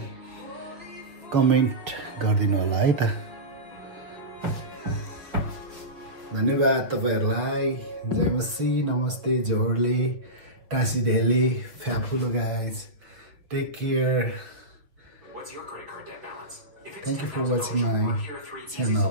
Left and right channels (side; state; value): left; late; 5.9 ms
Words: कमेन्ट गरिदिनु होला है त धन्यवाद तपाईहरुलाई जय मसी नमस्ते जोहरले टासी ढेली फ्याफुलो guys take care Thank you for watching my